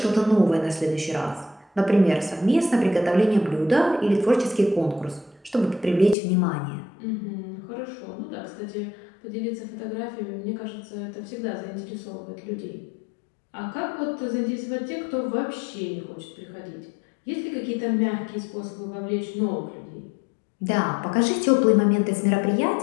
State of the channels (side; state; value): right; drops out; at 6.2 s